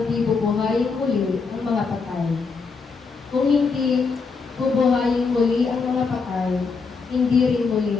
di bubuhayin muli ang mga patay, kung hindi bubuhayin muli ang mga patay, hindi rin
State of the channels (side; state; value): right; quieter; 4.8 dB